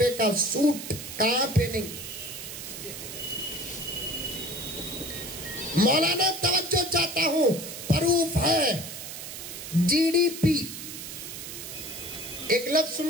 کا سوٹ کہاں پہ نہیں. مولانا توجہ چاہتا ہوں, پروف ہے GDP. ایک لفظ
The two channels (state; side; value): noise; right; hiss, 9 dB below the sound